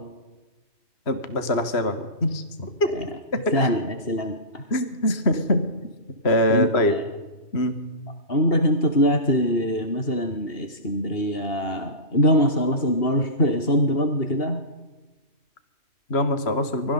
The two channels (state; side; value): late; right; 3.0 ms